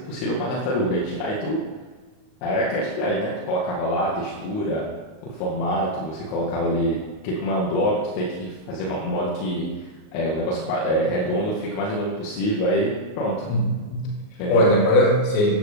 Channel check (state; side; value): late; right; 38 ms